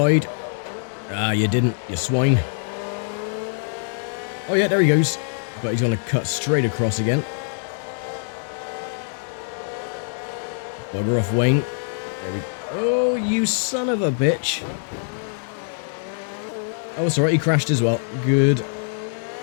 Ah, you didn't, you swine. Oh yeah, there he goes. But he's going to cut straight across again. Bugger off, Wayne. There we go. Oh, you son of a bitch. Oh, it's alright, he crashed as well. Good.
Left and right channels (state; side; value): silent; right; 63 dB below the other